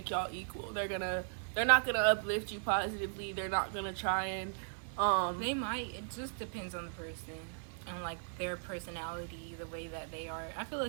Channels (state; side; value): silent; left; 53 dB below the other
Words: y'all equal. They're not gonna uplift you positively. They're not gonna try and they might. It just depends on the person and like their personality, the way that they are. I feel